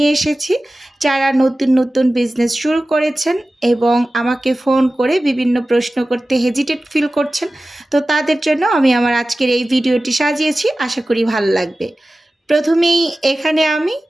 এসেছি। যারা নতুন নতুন বিজনেস শুরু করেছেন এবং আমাকে ফোন করে বিভিন্ন প্রশ্ন করতে হেজিটেট ফিল করছেন, তো তাদের জন্য আমি আমার আজকের এই ভিডিওটি সাজিয়েছি। আশা করি ভালো লাগবে। প্রথমেই এখানে আমি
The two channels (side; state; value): both; normal; correlation 0.96